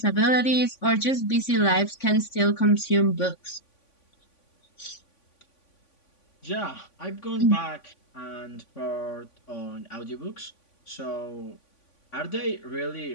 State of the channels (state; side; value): late; right; 3.5 ms